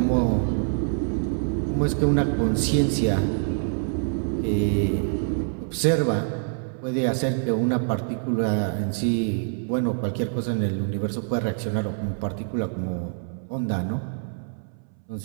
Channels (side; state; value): left; silent; 61 dB below the other